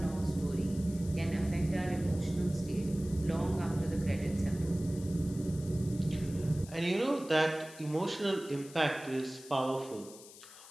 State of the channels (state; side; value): noise; left; hiss, 18 dB below the sound